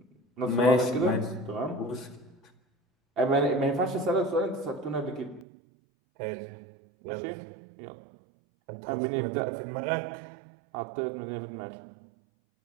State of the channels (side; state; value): left; drops out; at 5.5 s